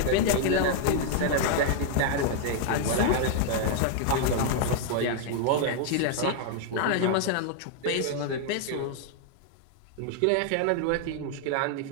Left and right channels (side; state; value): both; different; correlation 0.00